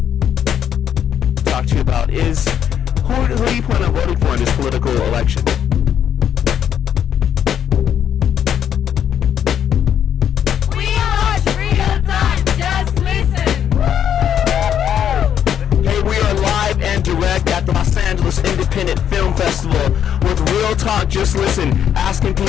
Talk to you about is who do you plan on voting for in this political election? We watch Real Talk, just listen. Hey, we are live and direct at the Los Angeles Independent Film Festival with Real Talk, just listen, asking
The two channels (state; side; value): quieter; right; 9.2 dB